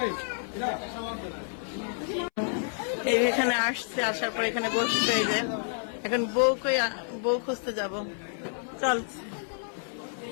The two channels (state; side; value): silent; right; 58 dB below the other